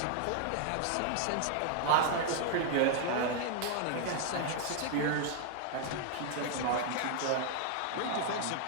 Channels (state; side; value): different; both; correlation 0.00